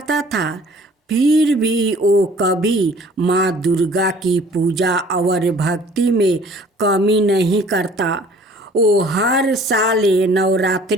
था। फिर भी वो कभी माँ दुर्गा की पूजा और भक्ति में कमी नहीं करता। वो हर साल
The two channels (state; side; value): normal; both; correlation 0.52